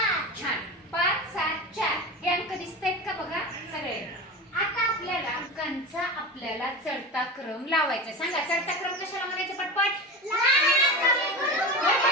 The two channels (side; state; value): both; normal; correlation 0.27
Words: छान. 5 7 4 हे अंक दिसतायत का बघा सगळे. आता आपल्याला अंकांचा चढता क्रम लावायचा. सांगा, चढता क्रम कशाला म्हणायचं? पटपट.